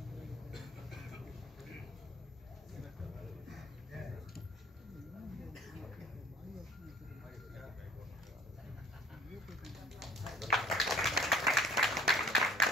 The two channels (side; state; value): both; normal; correlation 0.53